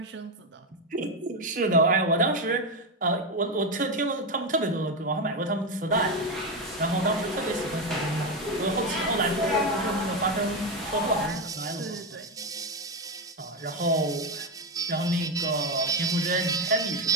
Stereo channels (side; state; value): both; normal; correlation 0.11